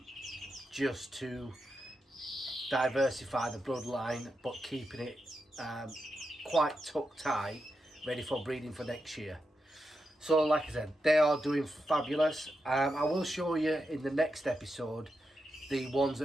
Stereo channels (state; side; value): normal; both; correlation 0.87